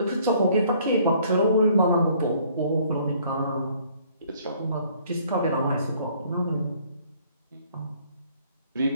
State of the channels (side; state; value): both; inverted; correlation -0.60